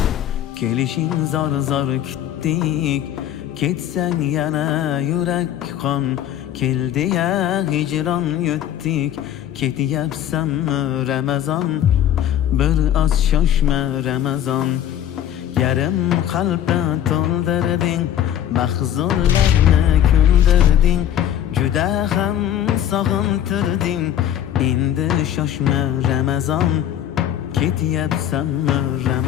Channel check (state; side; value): quieter; right; 10.6 dB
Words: Kelishing zor zor kutdik, ketsang yana yurak qon. Keldi ya hijron yutdik, ketyapsanmi Ramazon? Bir oz shoshma Ramazon. Yarim qalbni to'ldirding, mahzunlarni kuldirding, juda ham sog'intirding. Endi shoshma Ramazon, ketyapsanmi